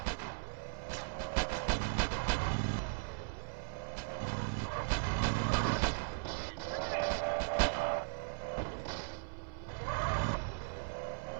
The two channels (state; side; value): silent; left; 53 dB below the other